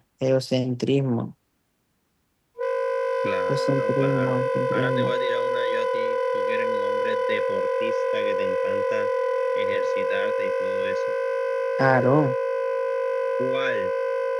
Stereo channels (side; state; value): both; identical; correlation 1.00